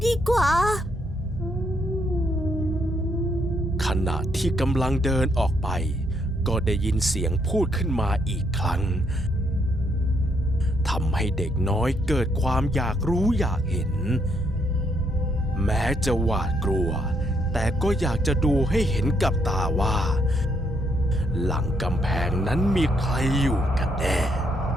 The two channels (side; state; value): both; normal; correlation 0.74